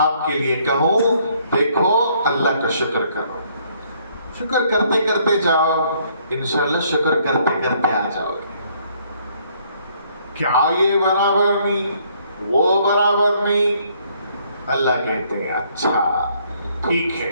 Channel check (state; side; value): inverted; both; correlation -0.66